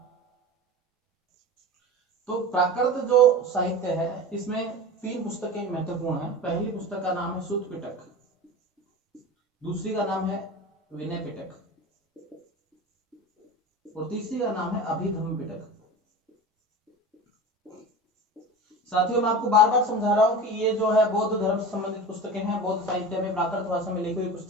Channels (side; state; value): both; normal; correlation 0.32